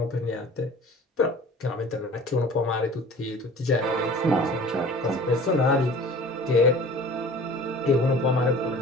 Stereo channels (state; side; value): normal; both; correlation 0.44